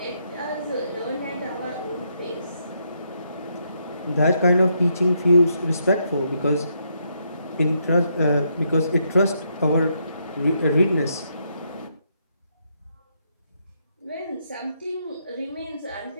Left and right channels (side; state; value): both; inverted; correlation -0.77